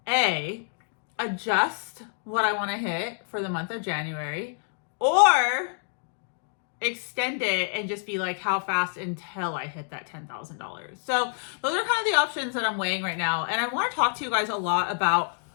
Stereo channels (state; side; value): silent; right; digital silence